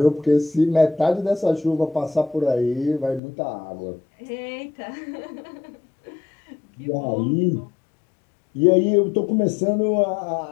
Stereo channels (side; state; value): right; drops out; at 3.2 s